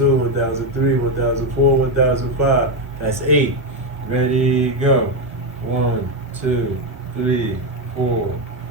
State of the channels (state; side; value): normal; both; correlation 0.07